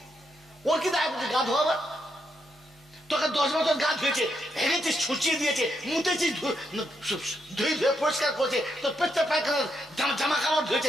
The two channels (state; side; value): normal; both; correlation 0.80